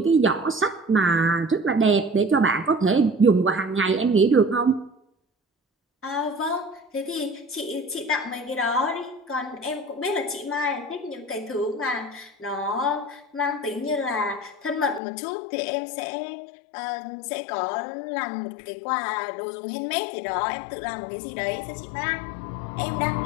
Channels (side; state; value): right; drops out; at 15.0 s